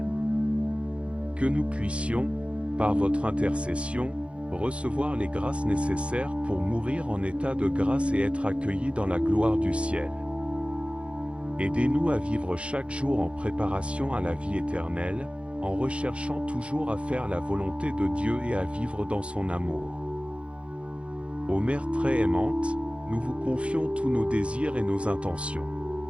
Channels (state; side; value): late; left; 0.060 ms